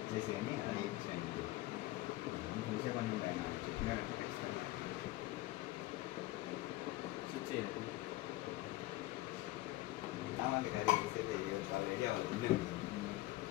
అని అది ఇచ్చాను చూసే పని ఉంటాయి నాకు చెప్పినారంటే ఖచ్చితంగా సామాన్లు క్యారీ చేసేది చాలా ఏరియా వాళ్ళు ఉండే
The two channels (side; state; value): right; quieter; 17.7 dB